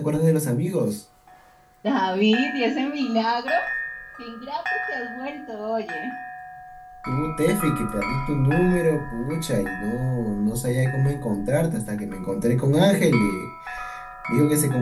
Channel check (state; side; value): identical; both; correlation 1.00